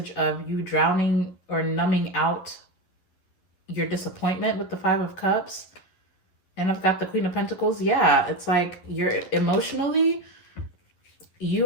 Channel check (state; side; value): late; right; 11 ms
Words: of you drowning or numbing out your disappointment with the Five of Cups. And I've got the Queen of Pentacles. Yeah, it's like you're emotionally,